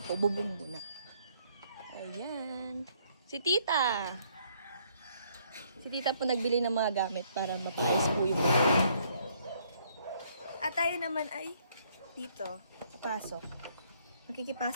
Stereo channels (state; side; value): inverted; both; correlation -0.67